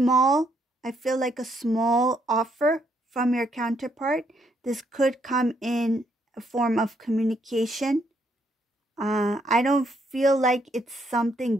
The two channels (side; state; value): both; normal; correlation 0.73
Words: feel like a small offer from your counterpart. This could come in a form of communication. I don't feel like it's